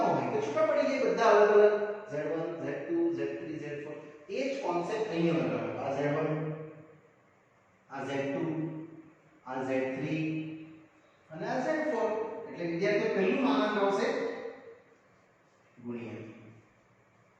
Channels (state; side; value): identical; both; correlation 1.00